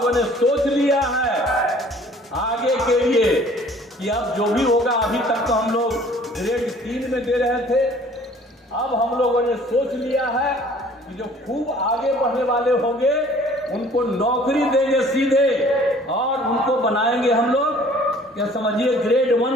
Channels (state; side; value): normal; both; correlation 0.53